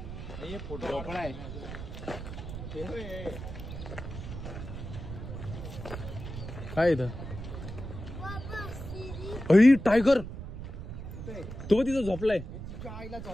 हे फोटो पण आहे. काय इथं? अई टायगर. तो तिथं झोपलाय. आईला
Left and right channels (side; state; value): right; noise; rumble, 8 dB below the sound